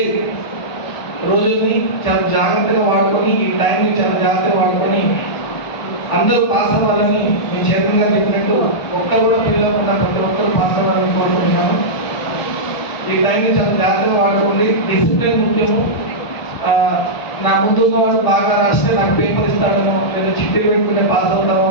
రోజుల్ని చాలా జాగ్రత్తగా వాడుకొని, ఈ టైంని చాలా జాగ్రత్తగా వాడుకొని అందరూ పాస్ అవ్వాలని నేను చేతంగా చెప్పినట్టు ఒక్కరు కూడా ఫెయిల్ అవ్వకుండా ప్రతి ఒక్కరు పాస్ అవ్వాలని కోరుకుంటున్నాను. ఈ టైంని చాలా జాగ్రత్తగా వాడుకోండి. డిసిప్లిన్ ముఖ్యము. నా ముందున్న వాడు బాగా రాస్తే నాకు పేపర్ ఇస్తాడనో లేదా చిట్టీలు పెట్టుకుంటే పాస్ అవుతామో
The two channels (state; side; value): late; right; 1.4 ms